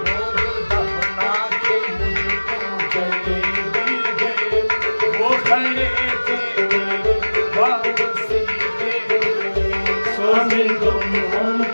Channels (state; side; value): inverted; both; correlation -1.00